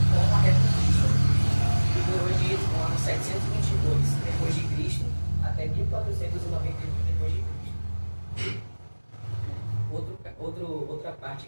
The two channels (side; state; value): both; inverted; correlation -1.00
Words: como a Reconquista, que durou do ano 722 depois de Cristo até 1491 depois de Cristo. Outra